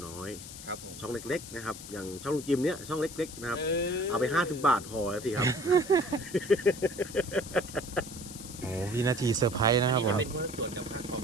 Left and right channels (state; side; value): noise; left; hiss, 13 dB below the sound